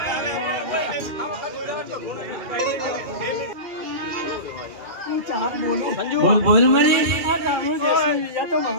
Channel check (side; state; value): left; late; 2.4 ms